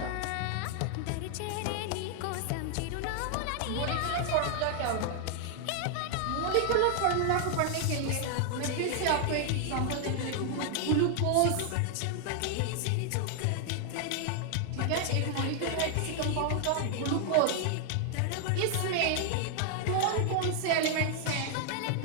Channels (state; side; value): different; both; correlation 0.00